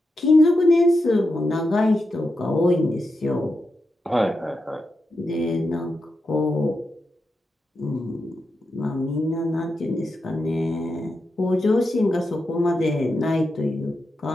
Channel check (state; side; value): normal; both; correlation 0.87